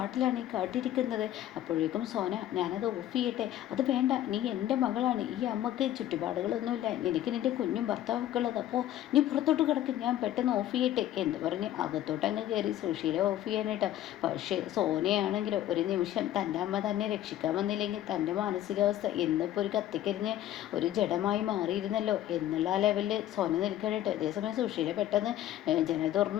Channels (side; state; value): right; quieter; 12.7 dB